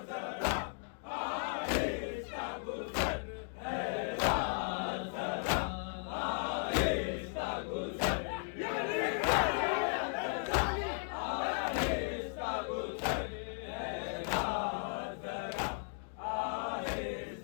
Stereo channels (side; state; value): right; silent; 54 dB below the other